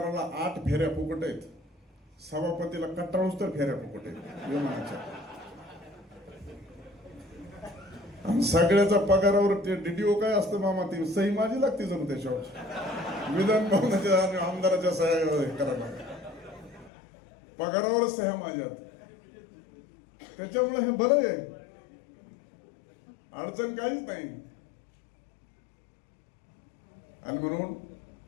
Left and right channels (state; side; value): drops out; right; at 16.9 s